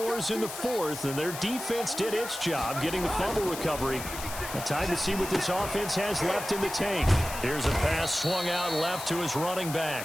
in the 4th, and their defense did its job getting the fumble recovery. Time to see what this offense has left in the tank. Here's a pass swung out left to his running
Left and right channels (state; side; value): noise; left; hiss, 9 dB below the sound